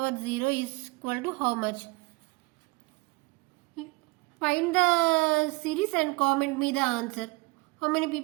0 is equal to how much? Find the series and comment me the answer. How many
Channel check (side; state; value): left; quieter; 26.3 dB